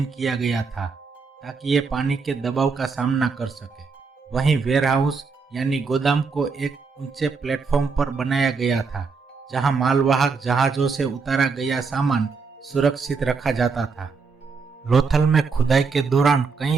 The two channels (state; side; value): quieter; left; 4.9 dB